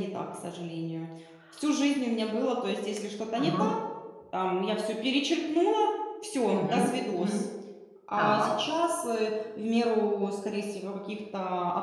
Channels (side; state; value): both; identical; correlation 1.00